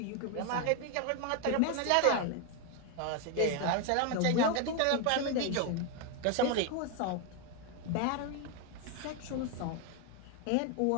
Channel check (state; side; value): different; both; correlation 0.01